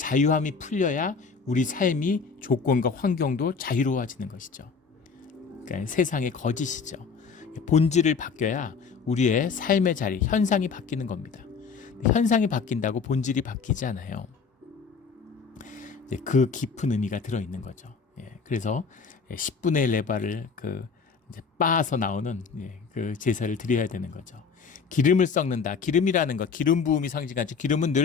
풀려야 우리 삶이, 조건과 환경도 자유로워지는 것이죠. 그러니까 세상의 거짓이죠. 본질을 바뀌어야 우리의 삶의 자리, 현상이 바뀌는 겁니다. 현상이 바뀐다고 본질이 바뀌지 않아요. 그 깊은 의미가 들어있는 거죠. 그래서 10분의 1 레바를 이제 빻아서 나오는 그 제사를 드려야 되는 거죠. 기름을 섞는다. 기름이라는 것, 기름 부음이 상징하죠. 기름은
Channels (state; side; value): quieter; right; 5.4 dB